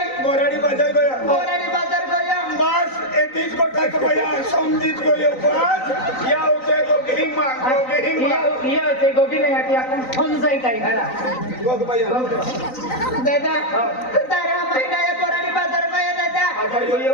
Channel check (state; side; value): late; right; 3.9 ms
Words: बोराडी बाजार गया बोराडी बाजार गयो बस एतीच गोटा को भैया समझीत गयो बस या होते को गेहिंग मांग या ते गोगी नाही आती आपण फोन जाई काय घरा गोग भैया दादा तारो आम्ही डायो बोराडी बाजार गयो दादा बाजार